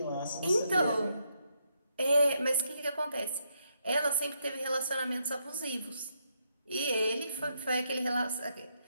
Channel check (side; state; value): both; inverted; correlation -0.78